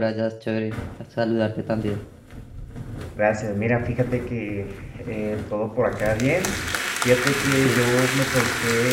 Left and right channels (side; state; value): both; identical; correlation 1.00